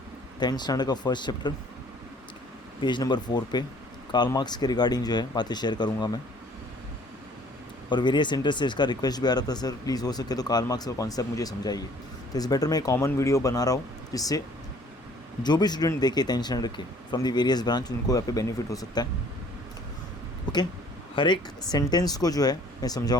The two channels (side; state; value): both; normal; correlation 0.56